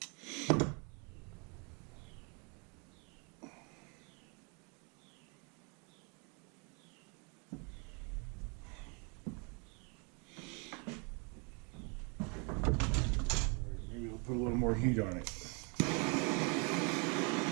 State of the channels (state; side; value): quieter; left; 34.2 dB